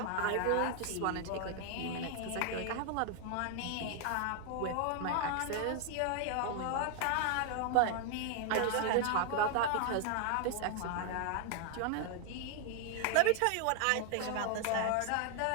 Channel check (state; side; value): different; both; correlation 0.00